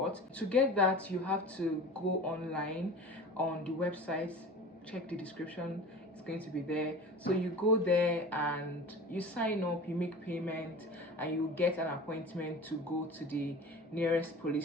To get that, you have to go online on the website. Check the description, it's going to be there. So you go there and you sign up, you make payment, and you get an appointment to go to the nearest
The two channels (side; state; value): both; normal; correlation 0.36